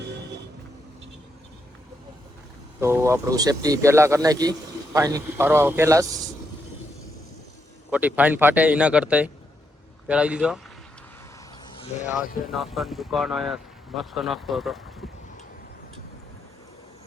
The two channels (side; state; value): both; normal; correlation 0.80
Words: તો આપણું સેફટી પહેલા કરી નાખી ફાઇન ફાડવા પહેલા જ ખોટી ફાઇન ફાટે એના કરતા પહેરાવી દીધો અને આ છે નાસ્તાની દુકાન અહીંયા મસ્ત નાસ્તો હતો